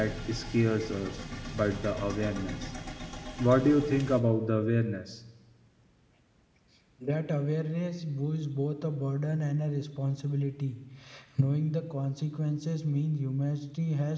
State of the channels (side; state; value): both; identical; correlation 1.00